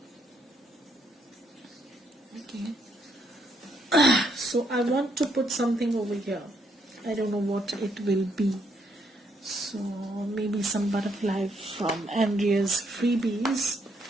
Okay. So I want to put something over here. I don't know what it will be. So maybe some butterfly from Andrea's freebies,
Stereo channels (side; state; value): both; normal; correlation 0.73